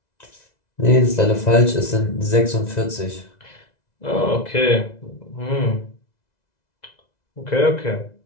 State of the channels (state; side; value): late; right; 2.0 ms